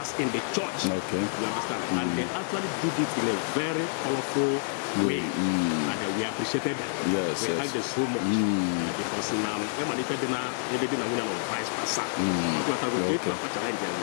in the church. Okay. You understand? And they actually did it in a very colorful way. And we appreciated them. Yes. We thank them so much. Because now, everything is vice versa. With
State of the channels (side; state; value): right; silent; digital silence